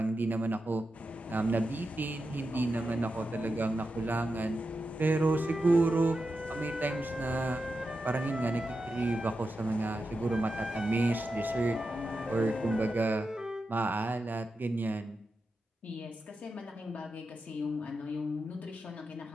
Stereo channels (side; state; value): both; normal; correlation 0.89